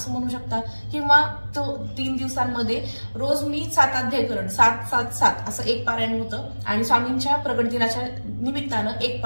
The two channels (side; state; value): both; inverted; correlation -1.00